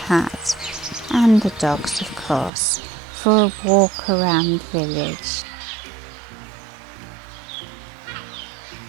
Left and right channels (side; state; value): left; drops out; at 2.5 s